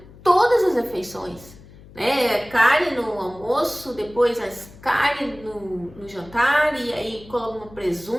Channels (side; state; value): left; noise; hum, 21 dB below the sound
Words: todas as refeições. Né? Carne no almoço, depois as carne no jantar, e aí colocam um